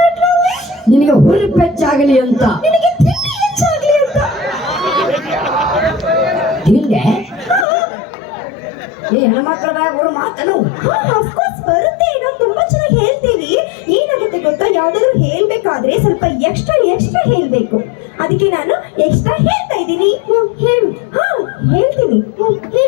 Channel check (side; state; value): right; drops out; at 7.7 s